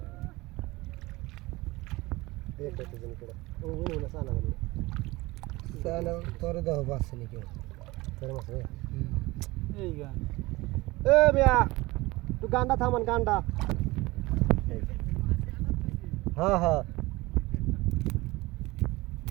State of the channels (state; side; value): quieter; left; 21.0 dB